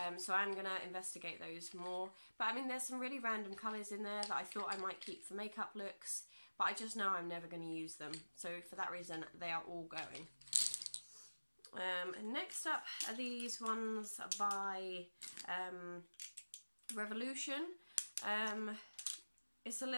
so I'm going to investigate those more. But I mean, there's some really random colours in there that I thought I might keep for makeup looks, but I just know I'm never going to use them. So for that reason, they are all going. And next up are these ones by Revolution. It's a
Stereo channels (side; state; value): both; inverted; correlation -1.00